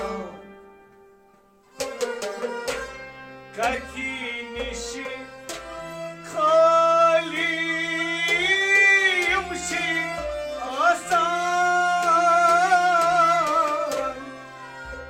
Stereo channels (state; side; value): identical; both; correlation 1.00